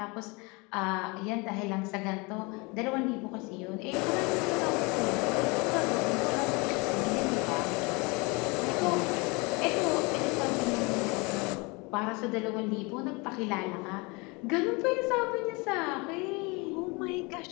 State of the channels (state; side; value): quieter; right; 27.7 dB